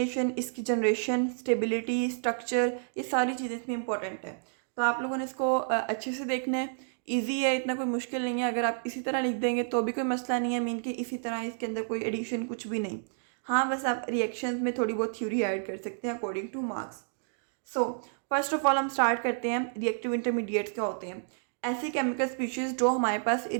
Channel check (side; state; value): left; silent; digital silence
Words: इसकी जनरेशन, स्टेबिलिटी, स्ट्रक्चर, ये सारी चीज़ें इसमें इंपॉर्टेंट है। तो आप लोगों ने इसको अच्छे से देखना है। ईजी है, इतना कोई मुश्किल नहीं है। अगर आप इसी तरह लिख देंगे तो भी कोई मसला नहीं है, मीन कि इसी तरह इसके अंदर कोई एडिशन कुछ भी नहीं। हाँ, बस आप रिएक्शंस में थोड़ी बहुत थ्योरी ऐड कर सकते हैं according two marks. So first of all हम स्टार्ट करते हैं, रिएक्टिव इंटरमीडिएट्स क्या होते हैं। ऐसी केमिकल स्पीशीज़ जो हमारे पास